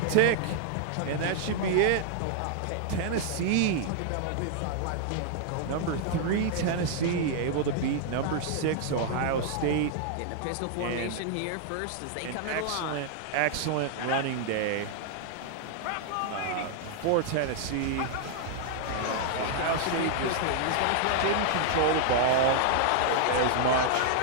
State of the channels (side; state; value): both; different; correlation -0.01